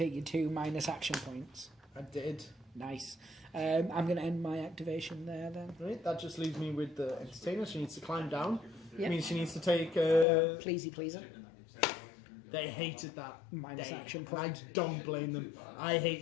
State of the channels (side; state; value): right; drops out; at 10.2 s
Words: your 2 minus action points? I did. Nice. I'm going to end my activation there then. Right, that just leaves me with the entertainer. She needs to climb down. Yep. Means she needs to take. Pleasey pleaser. They hated that. Minus They- action I point. don't blame them. I